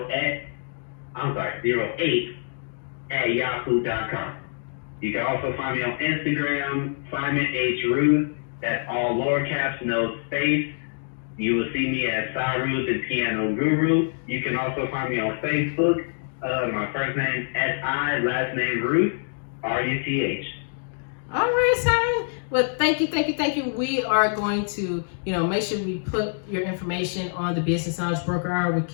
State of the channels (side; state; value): right; silent; digital silence